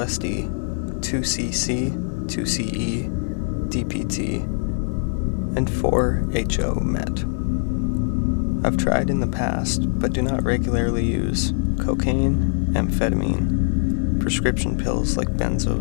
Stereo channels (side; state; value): right; silent; digital silence